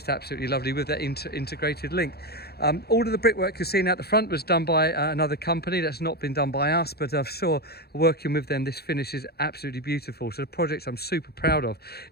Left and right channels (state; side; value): late; right; 0.46 ms